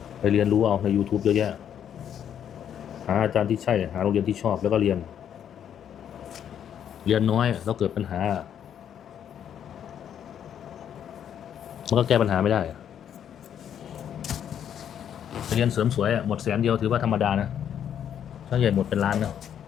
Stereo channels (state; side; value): quieter; right; 9.2 dB